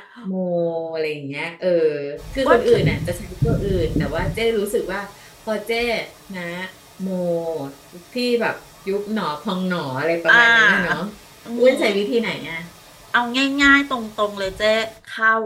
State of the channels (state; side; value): identical; both; correlation 1.00